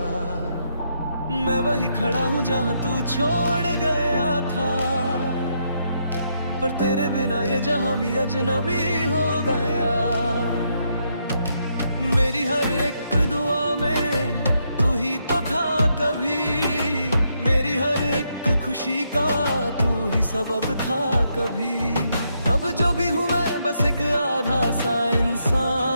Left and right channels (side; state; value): both; inverted; correlation -0.77